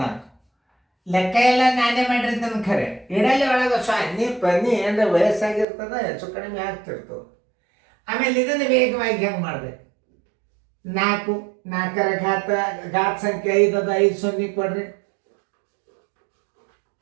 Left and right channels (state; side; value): drops out; left; at 5.7 s